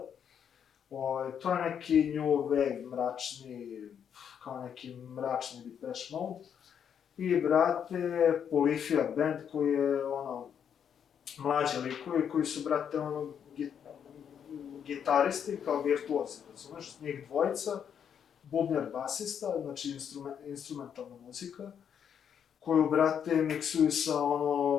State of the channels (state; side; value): quieter; right; 8.2 dB